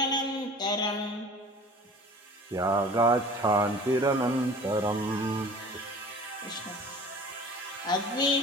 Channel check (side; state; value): both; normal; correlation 0.44